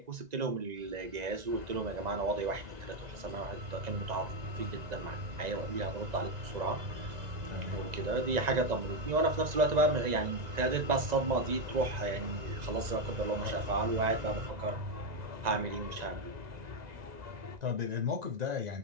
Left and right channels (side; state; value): left; late; 1.9 ms